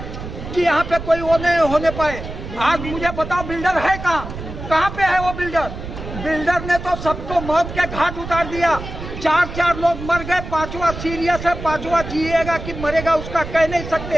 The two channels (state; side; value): noise; right; rumble, 9 dB below the sound